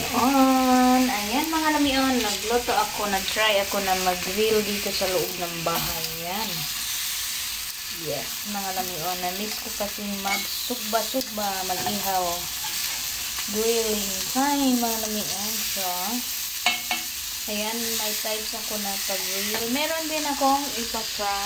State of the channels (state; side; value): identical; both; correlation 1.00